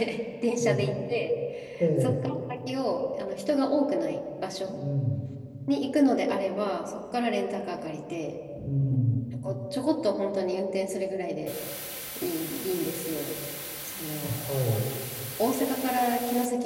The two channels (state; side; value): identical; both; correlation 1.00